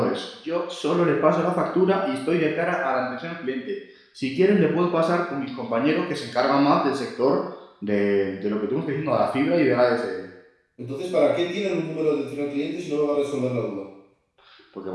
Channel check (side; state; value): both; identical; correlation 1.00